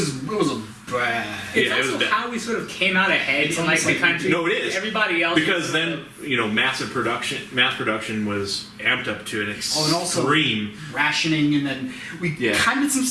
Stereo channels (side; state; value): both; identical; correlation 1.00